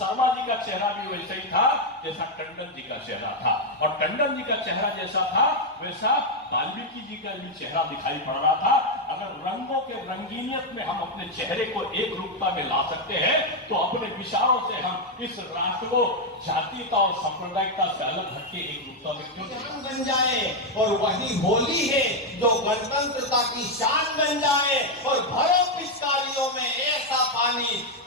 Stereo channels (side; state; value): both; normal; correlation 0.02